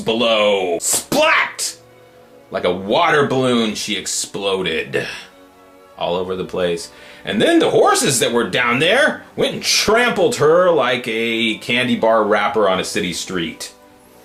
Splat! Like a water balloon, she exploded all over the place. And then the horses that were down there went and trampled her like a candy bar wrapper on a city street.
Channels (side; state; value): both; identical; correlation 1.00